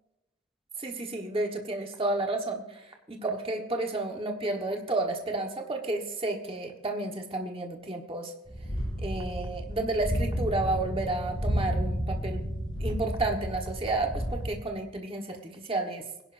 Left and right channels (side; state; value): both; normal; correlation 0.52